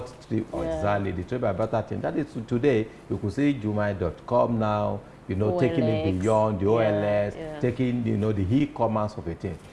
exactly, the trade by barter thing. That is today, you could see Jumia.com now, taking it beyond the OLS, taking, the e-commerce of a thing.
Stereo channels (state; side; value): identical; both; correlation 1.00